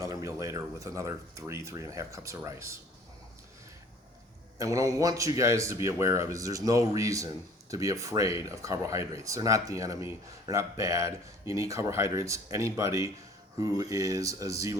meal later with another 3.5 cups of rice. And what I want you guys to be aware of is there's no reason to be afraid of carbohydrates. They're not the enemy. They're not bad. You need carbohydrates. Anybody who is a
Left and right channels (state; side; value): normal; both; correlation 0.51